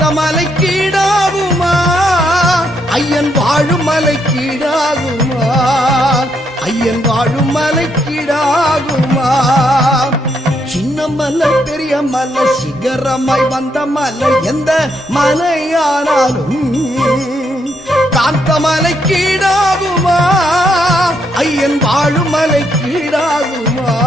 மலை கீழாகுமா ஐயன் வாழும் மலை கீழாகுமா ஐயன் வாழும் மலை கீழாகுமா சின்ன மல்ல பெரிய மல்ல சிகரமாய் வந்த மல்ல எந்த மலையானாலும் காந்த மலை கீழாகுமா ஐயன் வாழும் மலை கீழாகுமா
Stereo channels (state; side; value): normal; both; correlation 0.76